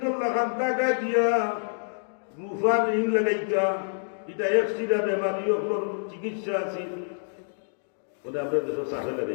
তোর লাগান্তা গায়ে দিয়া মুফা ঋণ লাগাইতা এটা একশিটা বেমারিও চিকিৎসা আছে আমরা দেশের সাথে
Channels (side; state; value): right; silent; digital silence